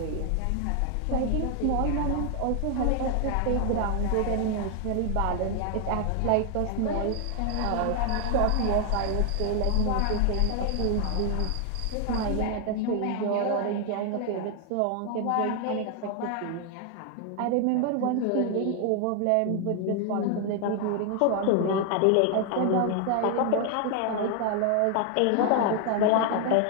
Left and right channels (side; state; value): both; different; correlation 0.00